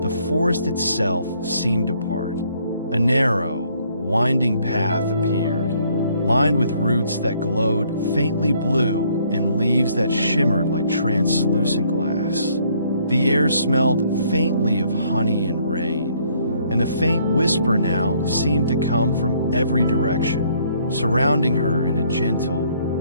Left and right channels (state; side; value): inverted; both; correlation -0.65